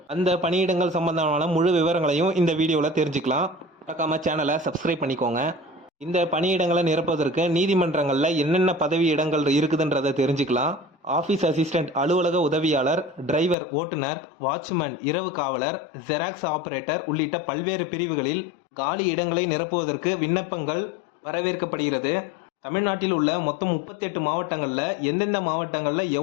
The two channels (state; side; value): drops out; right; at 13.6 s